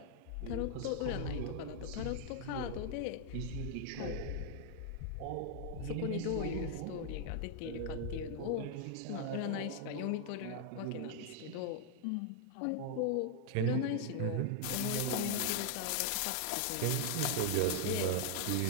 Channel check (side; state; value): both; different; correlation 0.00